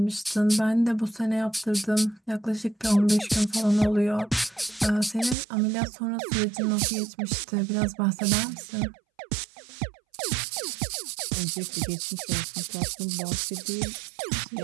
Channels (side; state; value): left; drops out; at 5.4 s